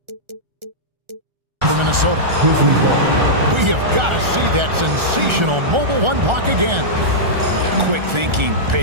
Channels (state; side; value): late; left; 1.4 ms